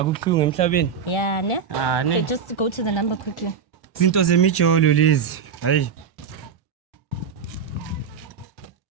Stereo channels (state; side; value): quieter; left; 6.7 dB